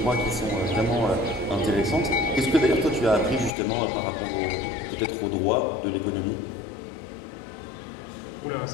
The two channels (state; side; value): drops out; right; at 3.5 s